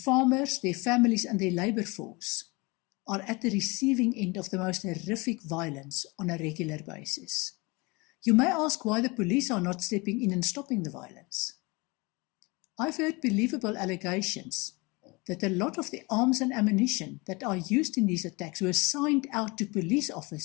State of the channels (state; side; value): quieter; right; 26.1 dB